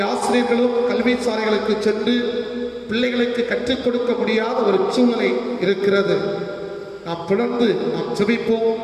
ஆசிரியர்களும் கல்வி சாலைகளுக்கு சென்று பிள்ளைகளுக்கு கற்றுக் கொடுக்க முடியாத ஒரு சூழலை இருக்கிறது. நாம் தொடர்ந்து நாம் ஜெபிப்போம்.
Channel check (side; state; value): both; identical; correlation 1.00